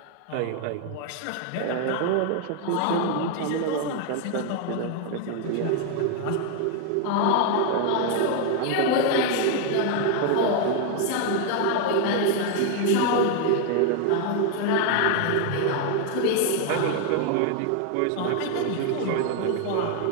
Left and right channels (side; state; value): both; different; correlation 0.01